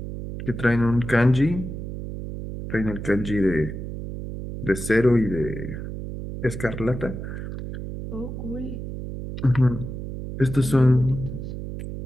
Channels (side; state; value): right; noise; hum, 7 dB below the sound